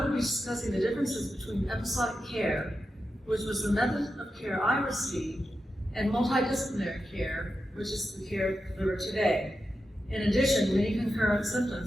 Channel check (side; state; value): both; normal; correlation 0.89